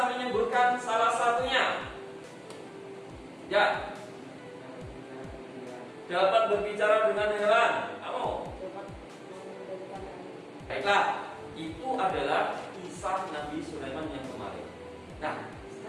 menyebutkan salah satunya? Ya. Dapat berbicara dengan hewan. Kamu? Baiklah, itu adalah kisah Nabi Sulaiman yang kemarin. Nah,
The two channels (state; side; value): identical; both; correlation 1.00